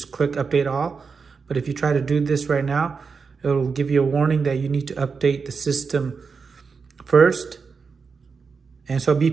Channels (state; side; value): quieter; left; 5.2 dB